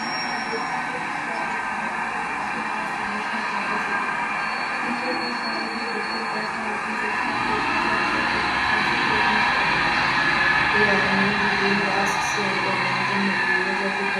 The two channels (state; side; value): identical; both; correlation 1.00